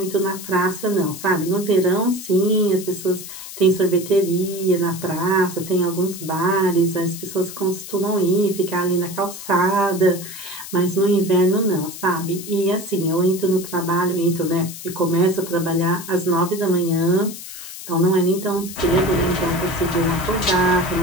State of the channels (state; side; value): noise; left; hiss, 12 dB below the sound